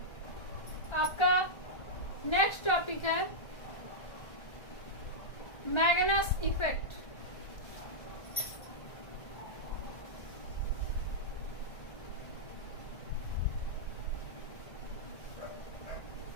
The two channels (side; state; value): right; late; 1.3 ms